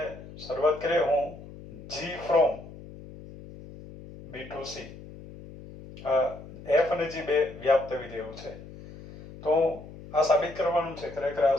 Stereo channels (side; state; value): left; noise; hum, 16 dB below the sound